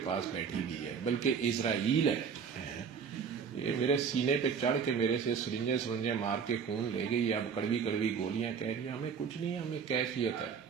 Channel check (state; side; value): quieter; left; 6.5 dB